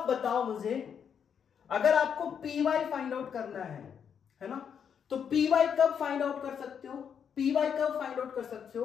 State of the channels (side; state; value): right; quieter; 7.6 dB